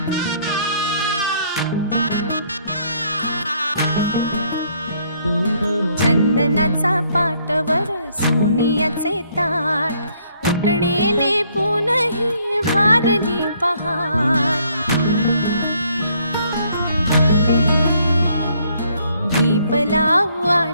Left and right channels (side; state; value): both; inverted; correlation -0.67